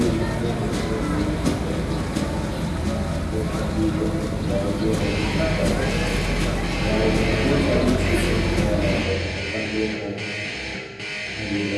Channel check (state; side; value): identical; both; correlation 1.00